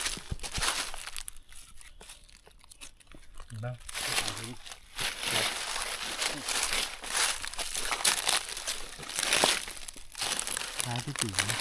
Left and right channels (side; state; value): both; identical; correlation 1.00